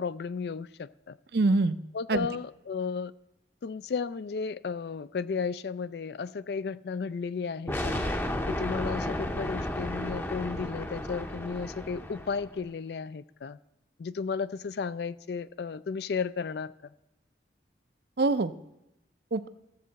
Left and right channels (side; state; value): both; normal; correlation 0.37